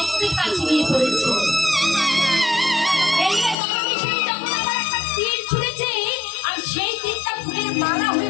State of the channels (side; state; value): right; drops out; at 3.6 s